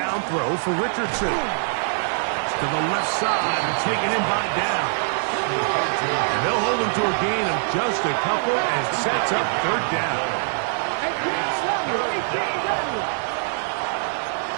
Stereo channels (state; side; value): silent; left; digital silence